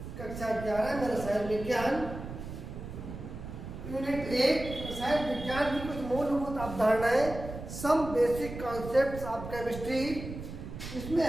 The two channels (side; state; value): right; noise; rumble, 9 dB below the sound